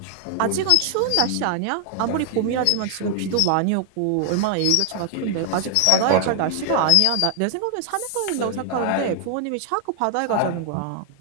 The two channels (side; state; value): both; different; correlation 0.00